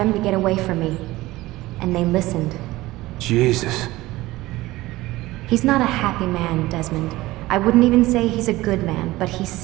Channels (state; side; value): quieter; left; 18.4 dB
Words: to get away from me. And they listened. Jesus. He's not a happy man, Desmond. I wouldn't even say he's a good man, but he